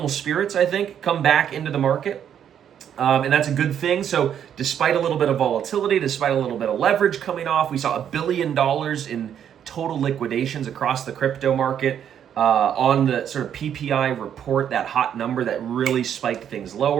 spirits, I think, come back into the market. And that's a good thing. So despite a little bit of volatility, despite a little bit of leverage coming off, we saw $1 billion in total liquidations across the crypto market on the sort of PPI report, that hot number that really spiked things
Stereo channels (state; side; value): quieter; left; 9.2 dB